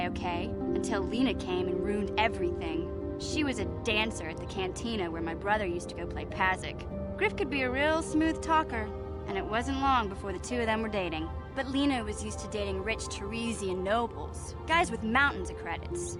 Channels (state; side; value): identical; both; correlation 1.00